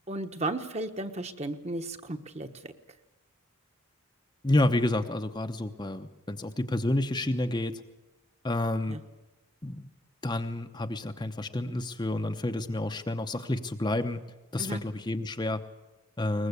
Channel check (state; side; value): normal; both; correlation 0.76